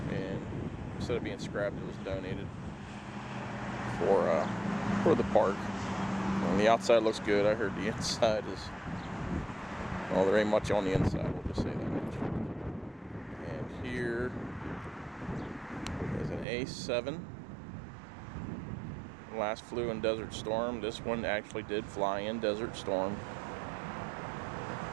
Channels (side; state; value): left; drops out; at 16.4 s